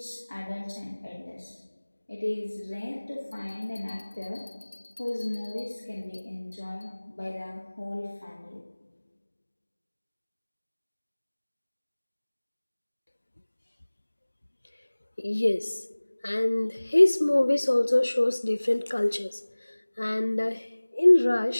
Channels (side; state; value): both; inverted; correlation -1.00